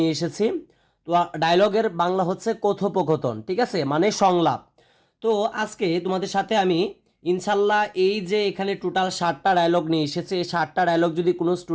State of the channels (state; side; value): identical; both; correlation 1.00